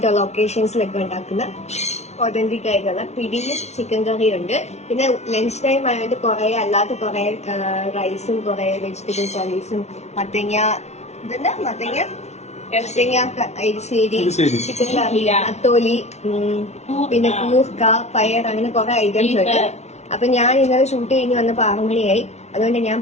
ഉള്ള ഒക്കേഷൻസിലൊക്കെ ഉണ്ടാക്കുന്ന ഒതന്റിക് ആയിട്ടുള്ള പിടിയും ചിക്കൻ കറിയും ഉണ്ട്. പിന്നെ ലഞ്ച് ടൈം ആയതുകൊണ്ട് കുറെ അല്ലാത്ത കുറെ റൈസും കുറെ വെജിറ്റബിൾ കറീസും മത്തങ്ങ എരിശ്ശേരി, ചിക്കൻ കറി, അത്തോലി, പിന്നെ കൂർക്ക, പയർ, അങ്ങനെ കുറെ ഐറ്റംസ് ഉണ്ട്. അപ്പൊ ഞാൻ ഇന്നലെ ഷൂട്ട് കഴിഞ്ഞ് വന്നപ്പോ 6 മണിയായി. അതുകൊണ്ട് ഞാൻ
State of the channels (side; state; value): right; late; 0.32 ms